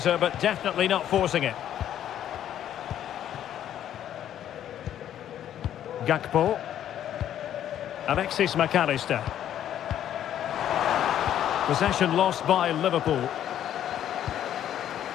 but definitely not forcing it. Gakpo. Alexis McAllister. Possession lost by Liverpool.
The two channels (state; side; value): quieter; right; 10.9 dB